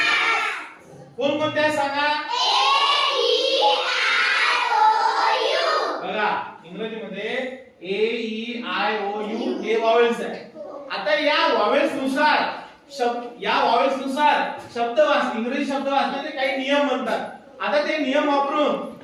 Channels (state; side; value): identical; both; correlation 1.00